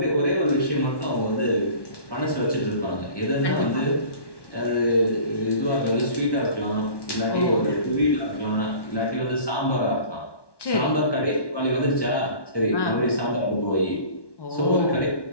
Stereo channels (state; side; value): late; right; 1.1 ms